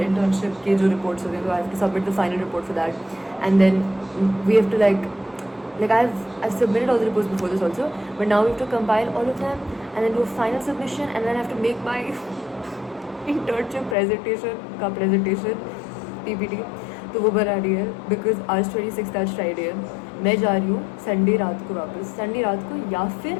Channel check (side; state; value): right; drops out; at 14.0 s